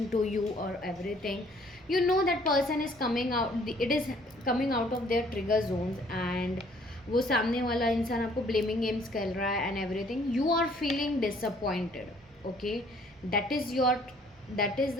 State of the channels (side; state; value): both; normal; correlation 0.60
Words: to you और everything, you know that person is coming out, it is coming out of their trigger zones and वो सामने वाला इंसान आपको ब्लेमिंग गेम्स खेल रहा है and everything, you are feeling disappointed, okay, that is your, that is